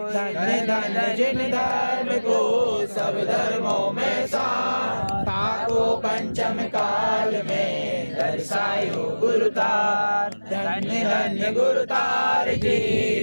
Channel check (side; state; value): both; inverted; correlation -1.00